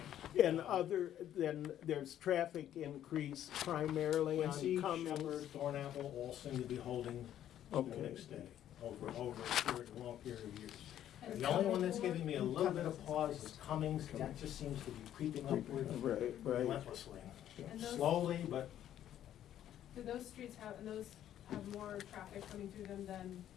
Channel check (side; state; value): right; quieter; 11.3 dB